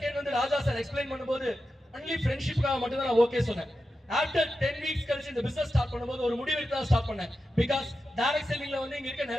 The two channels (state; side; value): normal; both; correlation 0.90